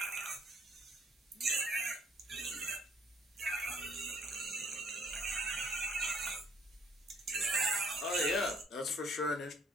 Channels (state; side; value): normal; both; correlation 0.63